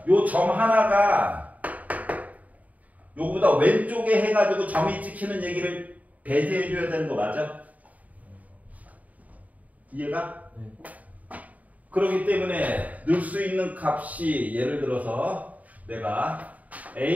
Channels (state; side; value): late; left; 0.072 ms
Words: 요 점 하나가 요거보다 왼쪽에 해가지고 점이 찍히는 얘기를 배제해 줘야 되는 거 맞아? 이해가? 네. 그렇기 때문에 넣을 수 있는 값이 예를 들어서 내가